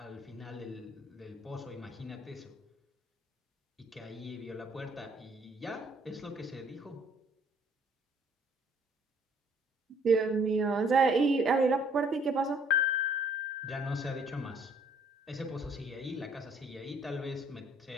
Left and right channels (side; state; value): both; normal; correlation 0.61